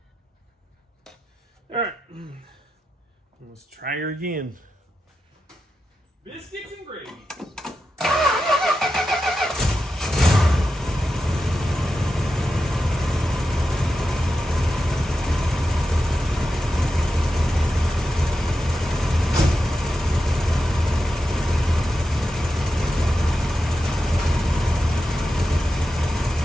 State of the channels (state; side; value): normal; both; correlation 0.90